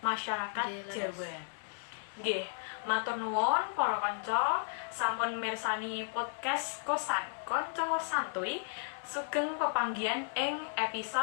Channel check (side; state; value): right; silent; digital silence